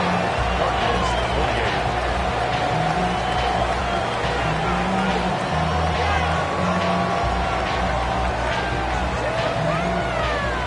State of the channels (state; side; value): identical; both; correlation 1.00